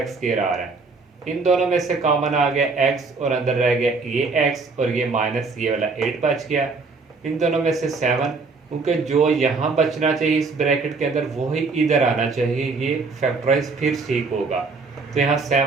स्क्वायर आ रहा है। इन दोनों में से कॉमन आ गया x और अंदर रह गया ये x और ये माइनस ये वाला 8 बच गया। इन दोनों में से 7, क्योंकि जो यहाँ बचना चाहिए इस ब्रैकेट के अंदर वो ही इधर आना चाहिए, ये फैक्टराइज फिर ठीक होगा। तो यहाँ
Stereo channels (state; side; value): quieter; left; 4.2 dB